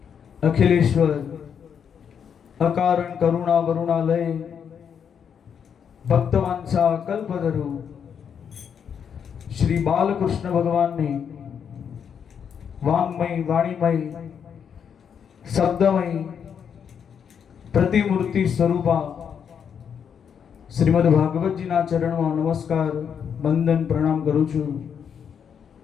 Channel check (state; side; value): quieter; right; 7.6 dB